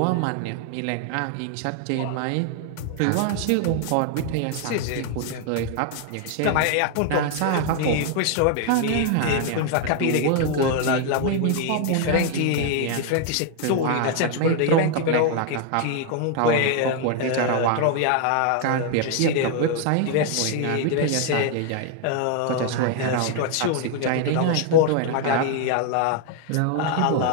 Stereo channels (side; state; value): both; different; correlation 0.00